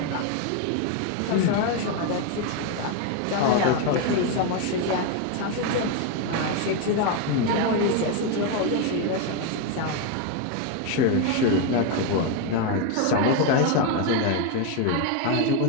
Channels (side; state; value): both; different; correlation 0.01